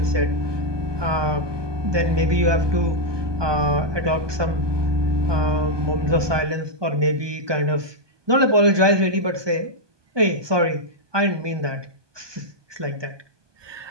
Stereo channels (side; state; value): left; late; 1.2 ms